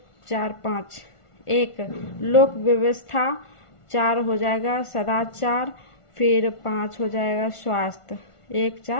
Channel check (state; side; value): late; right; 1.4 ms